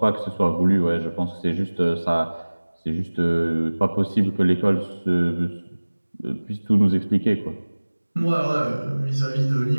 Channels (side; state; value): both; inverted; correlation -1.00